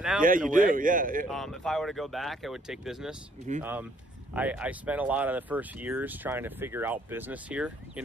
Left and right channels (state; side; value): normal; both; correlation 0.65